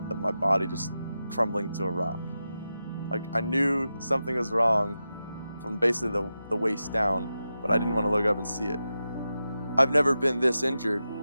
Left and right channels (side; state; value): both; inverted; correlation -0.91